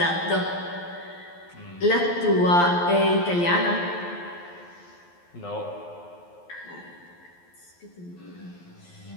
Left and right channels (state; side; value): late; right; 12 ms